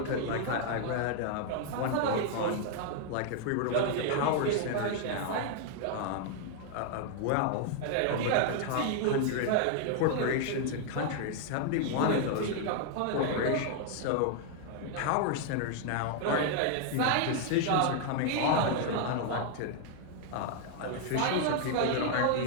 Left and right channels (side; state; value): both; different; correlation 0.00